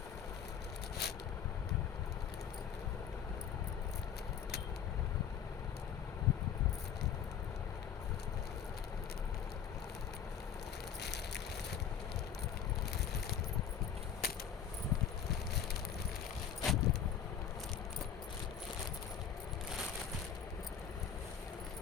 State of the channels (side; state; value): right; quieter; 8.2 dB